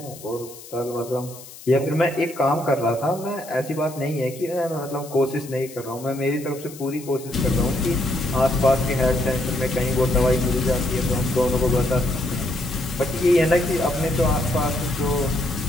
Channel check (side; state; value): left; noise; hiss, 17 dB below the sound